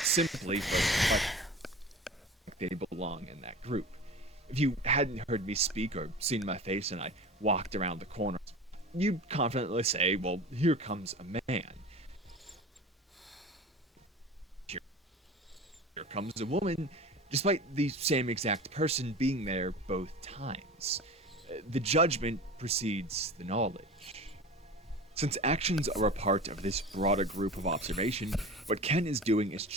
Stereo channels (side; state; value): both; normal; correlation 0.34